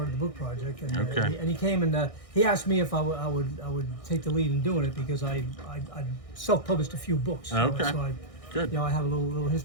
the book project, and Okay. he came and he asked me if I would take the lead in doing it because I self-published a few books. Okay. So I, Good. I have a little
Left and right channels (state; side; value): late; right; 1.6 ms